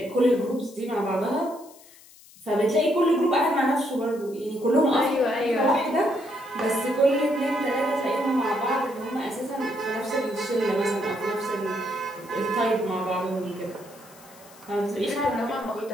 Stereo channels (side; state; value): left; noise; hiss, 23 dB below the sound